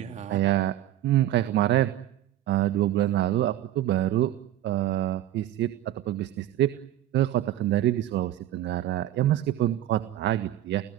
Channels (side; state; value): left; quieter; 13.0 dB